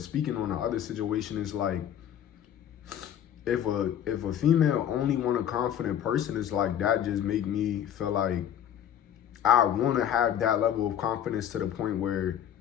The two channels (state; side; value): quieter; right; 9.9 dB